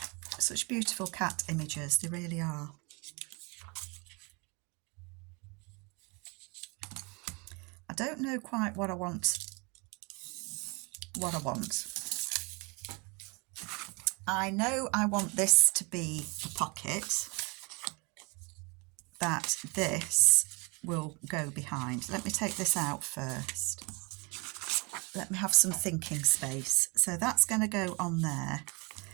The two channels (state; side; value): quieter; left; 29.8 dB